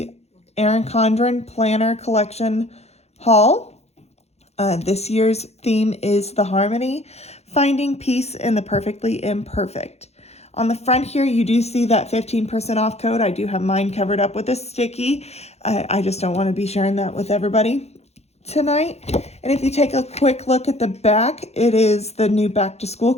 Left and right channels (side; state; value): right; late; 0.31 ms